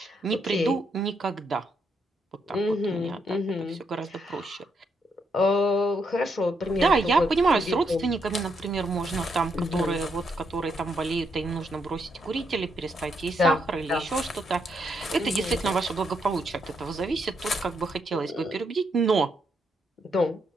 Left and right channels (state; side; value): normal; both; correlation 0.78